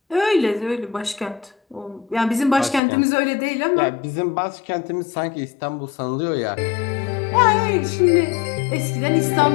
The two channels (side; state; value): right; drops out; at 2.8 s